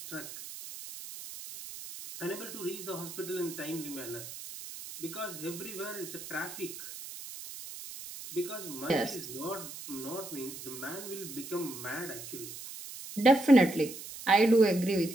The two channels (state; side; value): noise; right; hiss, 11 dB below the sound